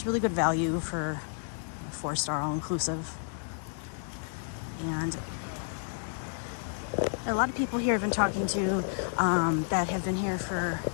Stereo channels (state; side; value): silent; right; digital silence